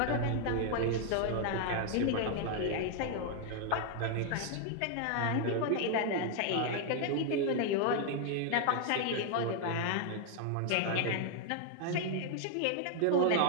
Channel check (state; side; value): different; both; correlation 0.00